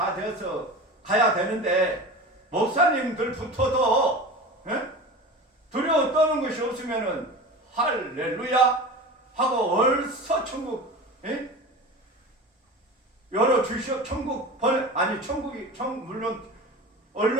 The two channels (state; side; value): normal; both; correlation 0.32